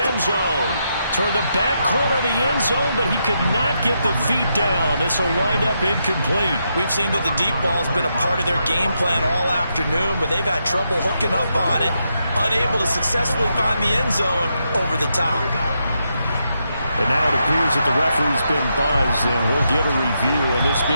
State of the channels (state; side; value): inverted; both; correlation -0.82